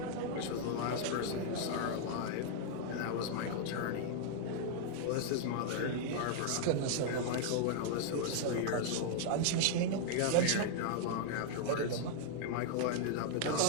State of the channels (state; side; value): different; both; correlation -0.01